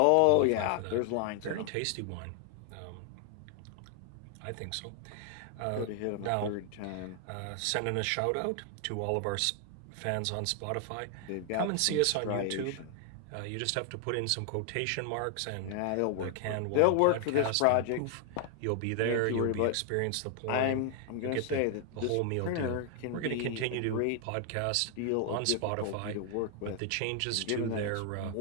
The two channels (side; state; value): both; different; correlation 0.00